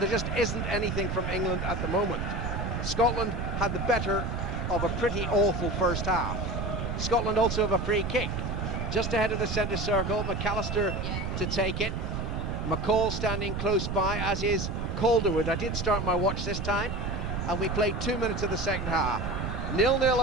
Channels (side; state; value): right; noise; rumble, 3 dB below the sound